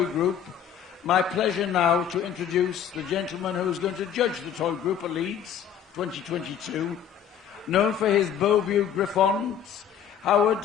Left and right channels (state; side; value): quieter; right; 8.8 dB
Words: group. My pleasure now to introduce the gentleman who's going to judge the toy group at Leeds 2022. Known for his Beauview Griffons, Howard